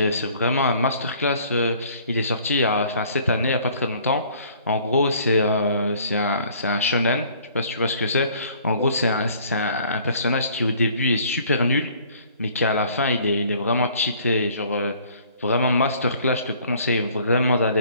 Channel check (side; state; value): both; inverted; correlation -0.56